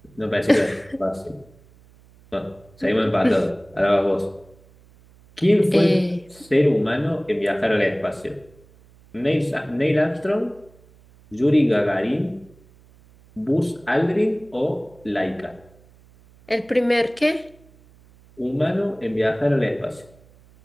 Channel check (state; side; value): noise; right; hum, 27 dB below the sound